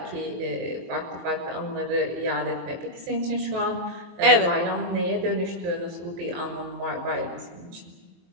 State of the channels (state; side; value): late; left; 23 ms